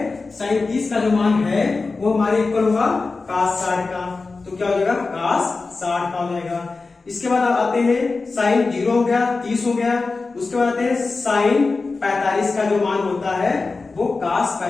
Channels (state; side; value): quieter; right; 3.9 dB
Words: साइन 30 का जो मान है वो हमारे इक्वल होगा cos 60 का। तो क्या हो जाएगा, cos 60 का हो जाएगा। इसके बाद आते हैं साइन 0 हो गया, 30 हो गया। उसके बाद आते हैं साइन 45 का जो मान होता है वो cos